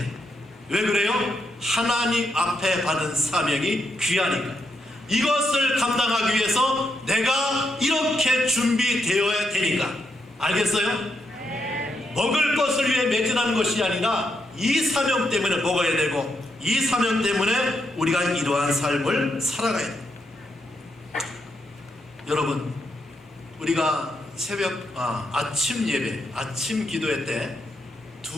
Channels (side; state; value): both; normal; correlation 0.81